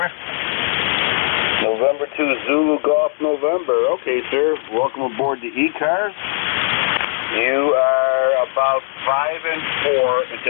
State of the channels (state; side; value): silent; right; 67 dB below the other